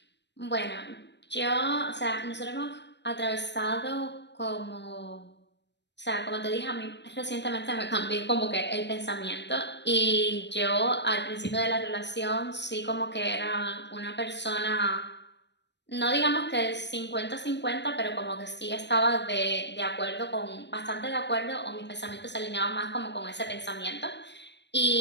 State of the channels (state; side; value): late; right; 0.51 ms